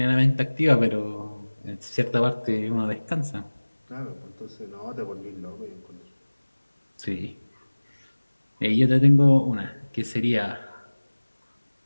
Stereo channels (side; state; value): both; inverted; correlation -1.00